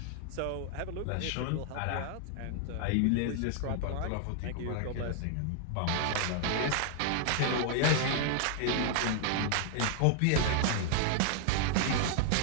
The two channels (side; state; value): both; different; correlation 0.00